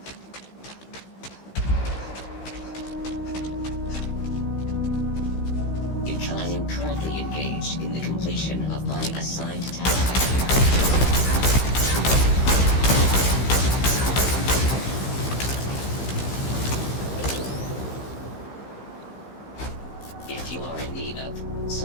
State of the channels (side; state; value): right; late; 15 ms